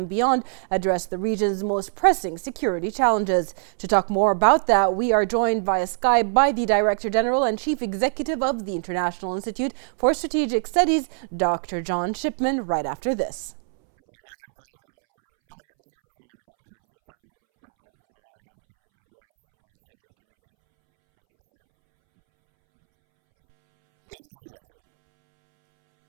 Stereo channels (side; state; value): left; silent; 64 dB below the other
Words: beyond address the region's most pressing security challenges. To talk more about that, we are joined via Skype by the Director General and Chief Executive of the International Institute for Strategic Studies, Dr. John Shipman, right after this. Could I now invite our Foreign Minister friend Abdul Latif Al-Zayani to address our second plenary. Thank you, sir. Ladies and gentlemen,